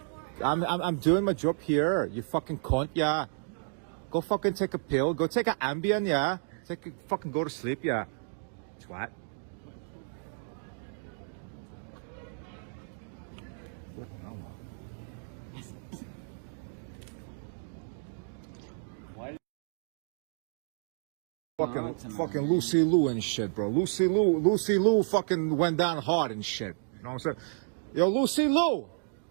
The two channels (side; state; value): left; silent; digital silence